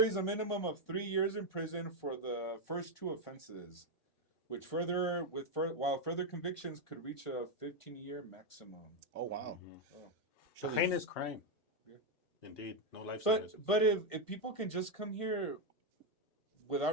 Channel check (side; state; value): right; late; 1.5 ms